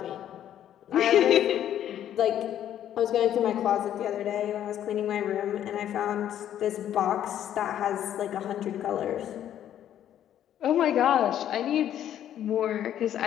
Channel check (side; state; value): right; quieter; 10.9 dB